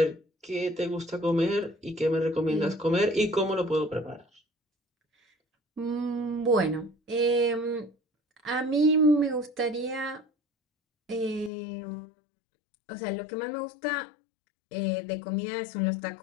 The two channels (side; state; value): right; drops out; at 11.5 s